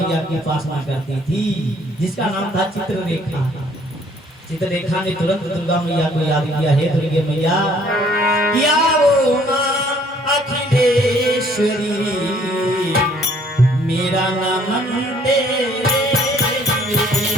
की उपासना करती थी, जिसका नाम था चित्ररेखा। चित्रलेखा ने तुरंत दुर्गा मैया को याद किया, हे दुर्गे मैया, क्या वो माँ अखिलेश्वरी, मेरा नमन तेरे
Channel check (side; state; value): both; normal; correlation 0.61